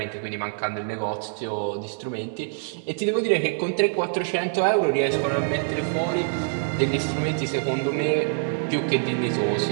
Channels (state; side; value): silent; left; 62 dB below the other